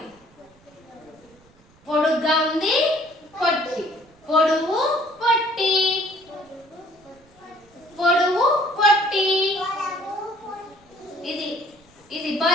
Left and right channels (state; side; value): noise; right; rumble, 30 dB below the sound